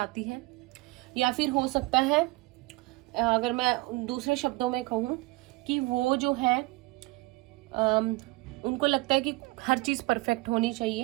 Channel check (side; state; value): left; quieter; 23.0 dB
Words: है, या फिर हो सकता है, अगर मैं दूसरे शब्दों में कहूँ, कि वो जो है उनको लगता है कि हर चीज परफेक्ट होनी